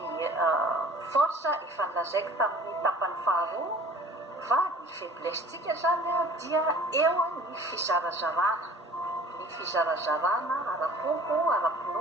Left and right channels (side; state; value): both; normal; correlation 0.47